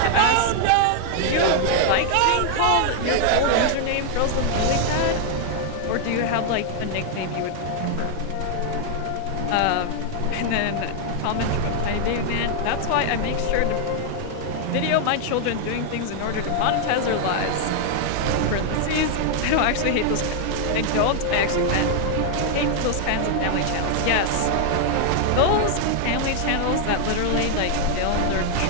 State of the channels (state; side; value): different; both; correlation 0.00